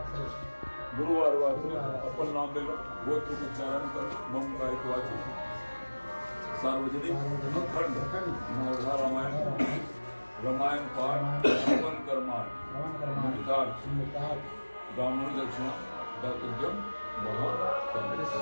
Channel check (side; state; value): both; inverted; correlation -1.00